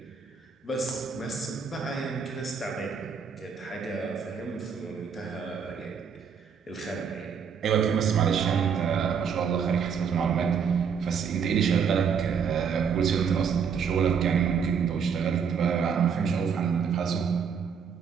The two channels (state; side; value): quieter; left; 6.7 dB